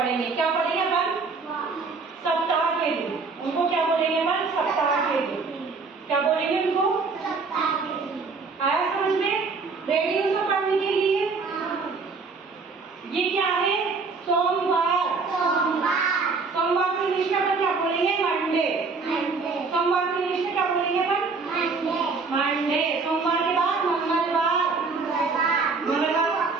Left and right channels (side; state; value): left; quieter; 4.4 dB